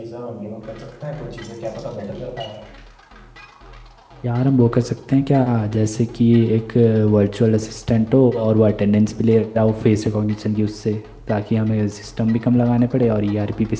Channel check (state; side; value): identical; both; correlation 1.00